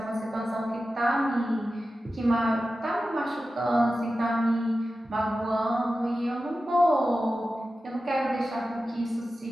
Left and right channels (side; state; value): both; normal; correlation 0.93